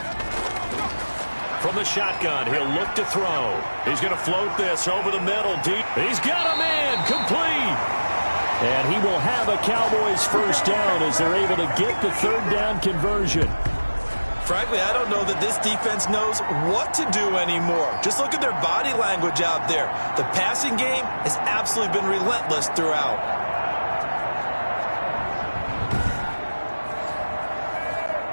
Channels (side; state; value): both; inverted; correlation -1.00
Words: From the shotgun, he'll look to throw. He's going to float this over the middle deep. He's got a man complete. And he will have a Cowboys 1st down as they're able to get the 3rd down conversion. Frankly, I don't know that this defense knows what to do anymore. Just look at their body language out there. The passing game has absolutely been relentless throughout.